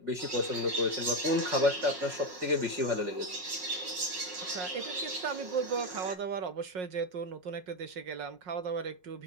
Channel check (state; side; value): late; left; 5.5 ms